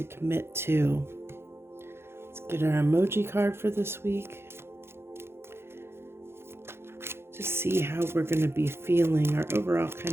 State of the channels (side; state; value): left; late; 0.12 ms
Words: commit to? Let's get our emoji card for this week. To see how we're going to be feeling. Our overall